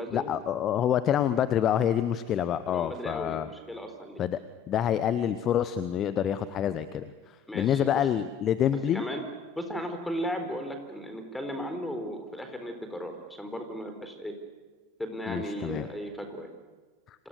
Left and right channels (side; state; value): right; quieter; 7.5 dB